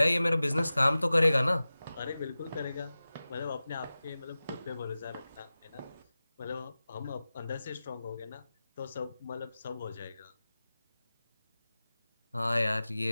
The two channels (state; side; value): inverted; both; correlation -0.96